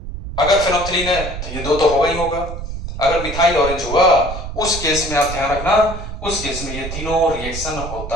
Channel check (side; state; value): right; noise; rumble, 8 dB below the sound